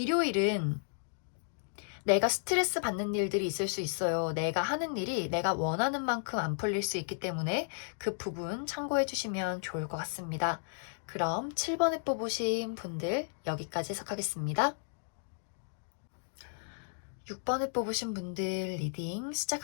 내가 스트레스 받는 일들이 있을 수 있어요. 내가 하는 일이 내가 원하는 만큼 안 풀릴 수 있기 때문에 그 부분 참고해 주시면 좋을 것 같습니다. 그럼 7번에 뽑으신 분들 여기까지 해석하겠습니다. 6번에 뽑으신 분들 리딩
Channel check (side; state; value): right; silent; digital silence